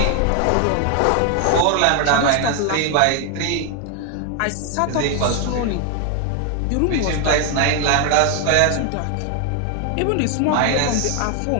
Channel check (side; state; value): both; different; correlation 0.01